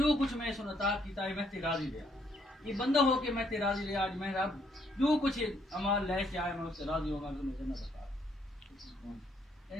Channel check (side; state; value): both; normal; correlation 0.70